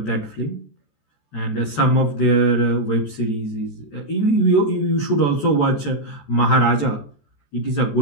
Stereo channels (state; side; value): late; right; 14 ms